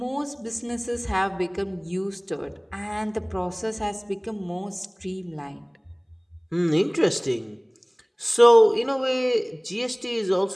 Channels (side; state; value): both; identical; correlation 1.00